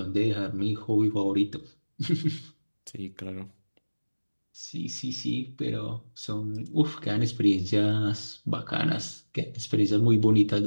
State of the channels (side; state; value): both; inverted; correlation -1.00